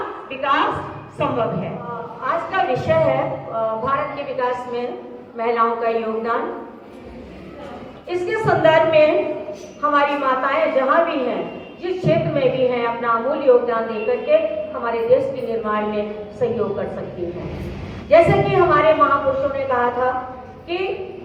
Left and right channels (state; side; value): identical; both; correlation 1.00